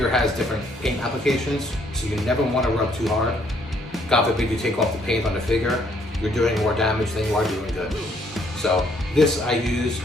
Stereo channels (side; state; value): both; normal; correlation 0.67